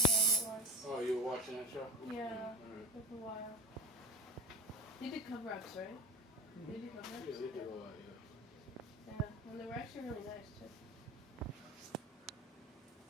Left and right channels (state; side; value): normal; both; correlation 0.32